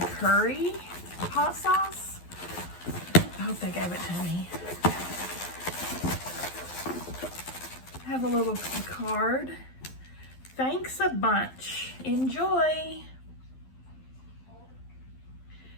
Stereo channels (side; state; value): right; late; 12 ms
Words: hot sauce. I hope they gave it to me. I have a little card. Thanks a bunch. Enjoy.